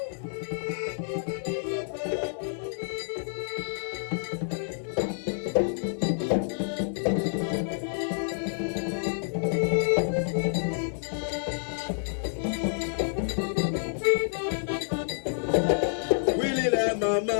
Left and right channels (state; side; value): silent; right; 59 dB below the other